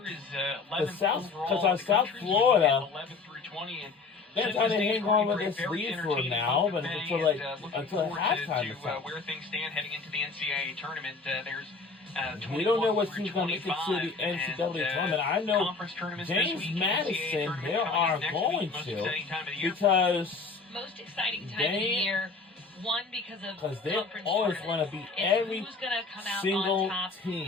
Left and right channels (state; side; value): quieter; right; 4.3 dB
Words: Is 11th overall. Because South Florida, 11 through 20, and they're trying to hang on with this lead for now, but until halftime or so. Where things stand heading into the NCAA tournament, there's we don't know what team's going to make it to the NCAA tournament. I know James Madison, they are going to, because most exciting time of the year. One, because they always want to beat every single